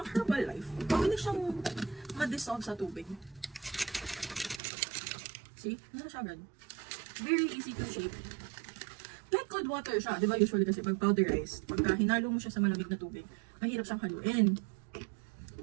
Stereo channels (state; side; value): drops out; left; at 4.6 s